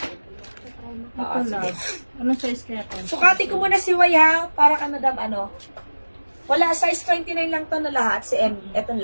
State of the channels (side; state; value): both; inverted; correlation -1.00